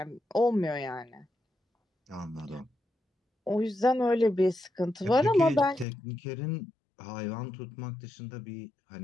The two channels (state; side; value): drops out; right; at 5.9 s